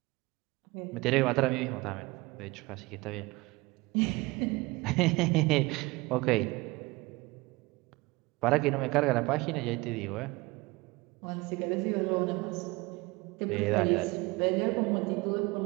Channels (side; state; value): left; quieter; 23.1 dB